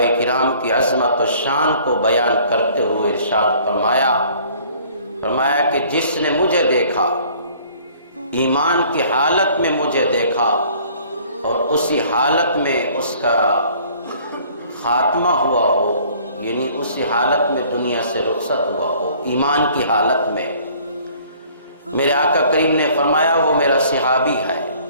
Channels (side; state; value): both; inverted; correlation -0.55